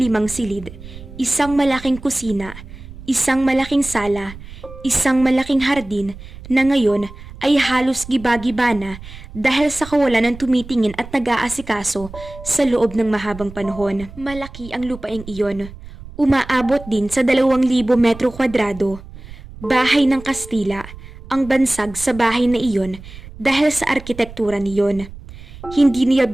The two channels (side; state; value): right; noise; rumble, 16 dB below the sound